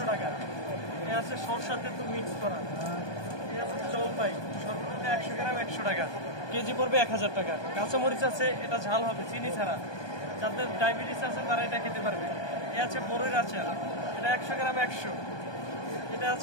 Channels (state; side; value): late; right; 1.2 ms